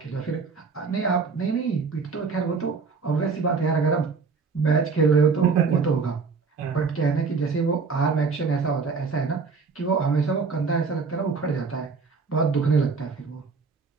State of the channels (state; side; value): quieter; left; 4.9 dB